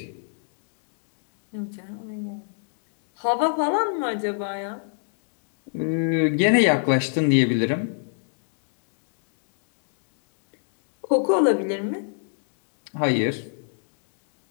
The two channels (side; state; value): right; silent; digital silence